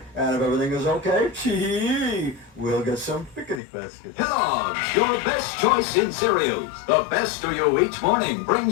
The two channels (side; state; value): right; drops out; at 3.6 s